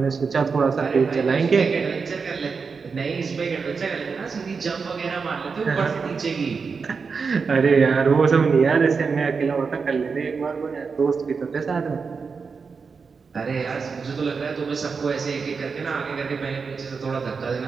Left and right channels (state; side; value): quieter; left; 5.2 dB